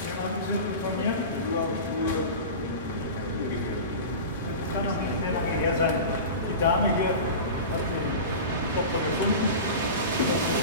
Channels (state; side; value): inverted; both; correlation -0.31